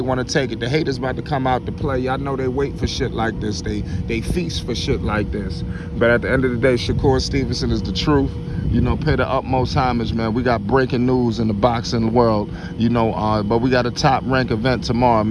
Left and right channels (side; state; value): both; identical; correlation 1.00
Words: to take it. The haters about to come out to play. Y'all know they wait for shit like this. They feast for shit like this. But at the end of the day, Shakur Stevenson is the truth. pay the utmost homage, man. We got breaking news in the boxing world, but we got a top rank event tomorrow,